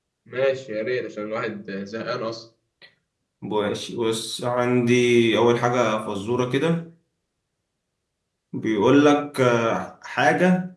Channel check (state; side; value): identical; both; correlation 1.00